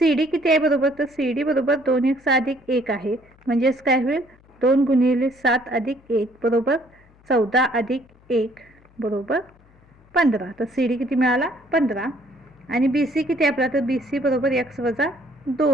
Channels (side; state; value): left; noise; hum, 29 dB below the sound